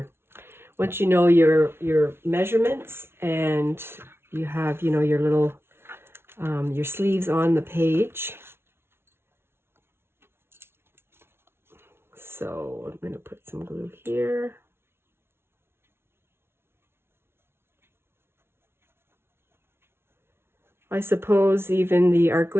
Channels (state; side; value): late; left; 0.12 ms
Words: once you know your measurements and you have, you know, your little your sleeves on the page. So I'm going to put some glue here. I suppose even the art